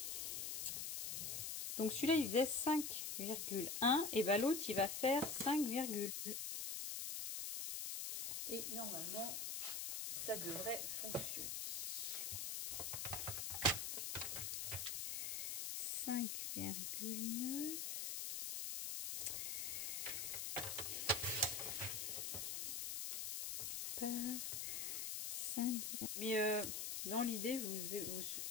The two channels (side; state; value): left; noise; hiss, 2 dB below the sound